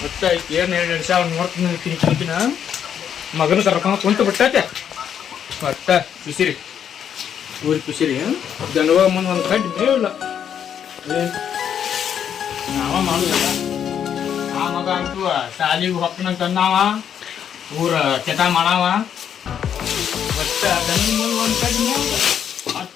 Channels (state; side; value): quieter; right; 8.7 dB